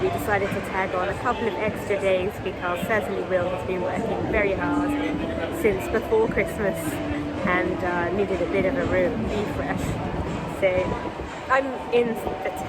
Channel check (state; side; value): identical; both; correlation 1.00